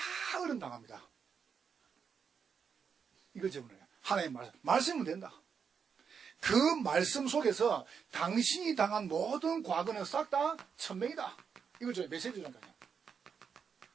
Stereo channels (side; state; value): left; quieter; 6.5 dB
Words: 어른 당합니다. 이걸 제문해요. 하나님 말씀은 된다. 그 말씀 속에서 당신이 당한 모든 과거는 싹 다 천명이다. 이걸 저희 메시지 주니까요.